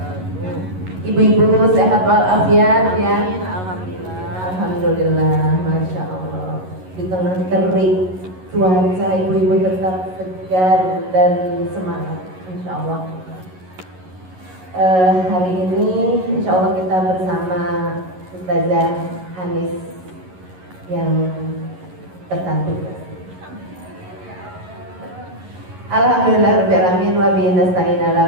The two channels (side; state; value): left; late; 11 ms